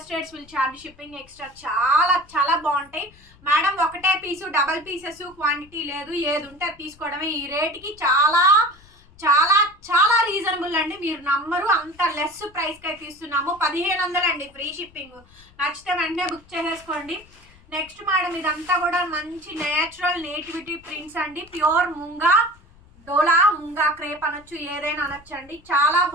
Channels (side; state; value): left; noise; rumble, 26 dB below the sound